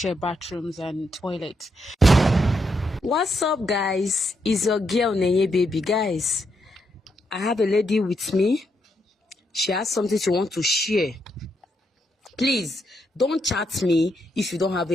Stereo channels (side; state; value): both; normal; correlation 0.80